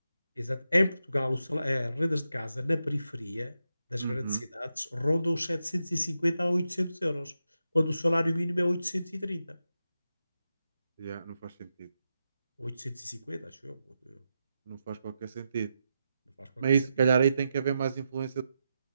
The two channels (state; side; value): inverted; both; correlation -0.87